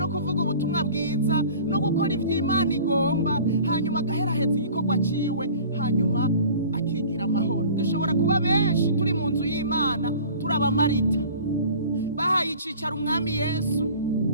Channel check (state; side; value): inverted; both; correlation -0.44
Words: kuvuga ubutumwa bwiza no gukora ivy'Imana igomba, hanyuma agaheraheza igikorwa ciwe, hanyuma akigira amahoro. Dushobora kuba benshi turi mu nzu y'Imana turaba Marita bahaye icicaro umwami Yesu